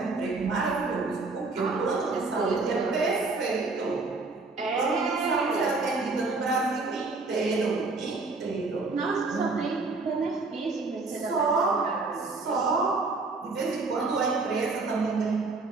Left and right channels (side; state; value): left; quieter; 3.7 dB